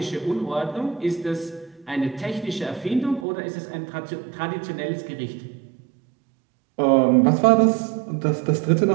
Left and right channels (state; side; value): drops out; left; at 3.2 s